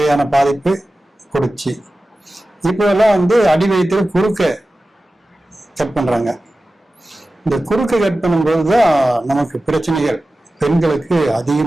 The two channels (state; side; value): normal; both; correlation 0.95